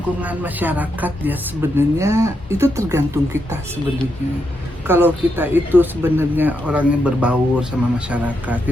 masyarakat ya sebenarnya itu tergantung kita sebenarnya. Kalau kita itu sebenarnya orangnya berbaur sama masyarakat,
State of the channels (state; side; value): normal; both; correlation 0.82